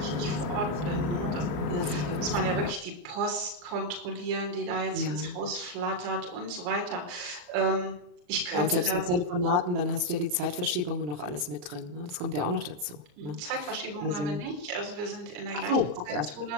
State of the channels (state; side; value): late; left; 34 ms